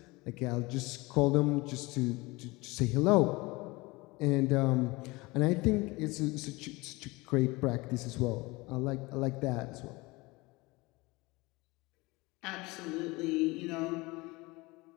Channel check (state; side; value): quieter; right; 23.2 dB